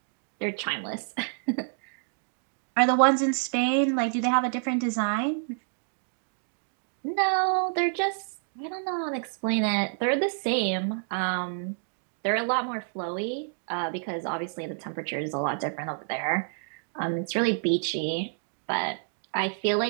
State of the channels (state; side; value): silent; left; digital silence